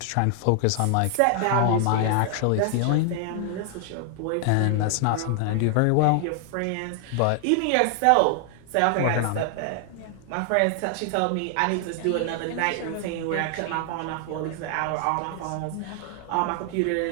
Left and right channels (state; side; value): different; both; correlation 0.00